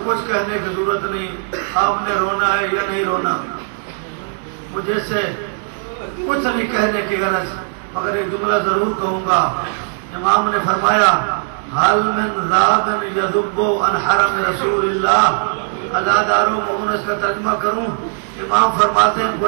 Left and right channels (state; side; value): silent; left; digital silence